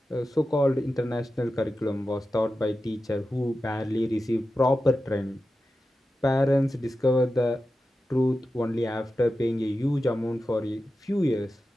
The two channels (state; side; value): normal; both; correlation 0.92